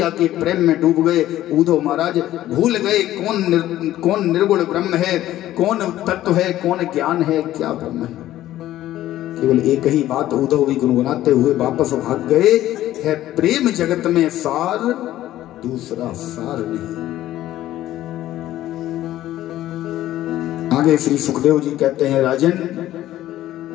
के प्रेम में डूब गए। उद्धव महाराज भूल गए कौन निर्गुण ब्रह्म है, कौन तत्व है, कौन ज्ञान है, क्या ब्रह्म है। केवल एक ही बात उद्धव भी गुनगुनाते हुए वापस भाग गए, है प्रेम जगत में सार, दूसरा सार नहीं। आगे श्री सुखदेव जी कहते हैं, राजन,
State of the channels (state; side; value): quieter; right; 13.9 dB